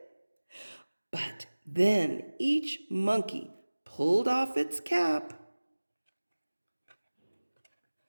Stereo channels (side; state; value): both; inverted; correlation -1.00